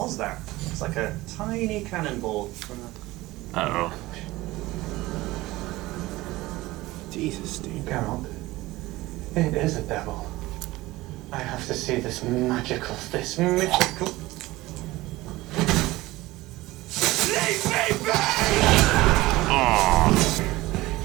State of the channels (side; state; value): left; quieter; 18.8 dB